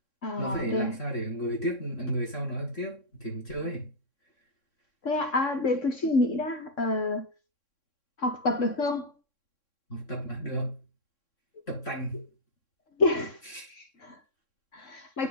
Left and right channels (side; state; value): right; late; 3.6 ms